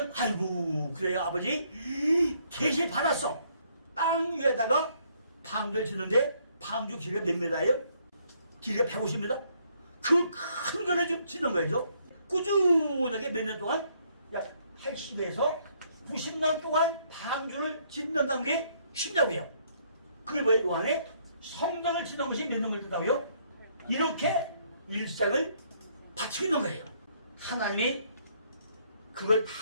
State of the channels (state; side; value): inverted; both; correlation -0.68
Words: 아이고 그래요 아버지 계시 받았어. 땅 위에다가 방주를 짓는데 방주 길이가 몇 미터예요? 길이가 150m? 그 큰 거를 좀 짓는 거죠. 꾸준하게 몇 년 동안 약 80에서 90년 동안 방주를 짓는다는 게 쉽냐고요. 그게 뭐예요? 그 안에 성전을 짓는 것이 몇 년을 든다고요? 이렇게 일생을 바치고 있는 거예요. 하나님이 그걸